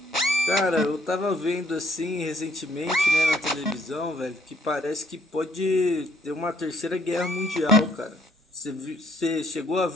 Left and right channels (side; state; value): both; normal; correlation 0.66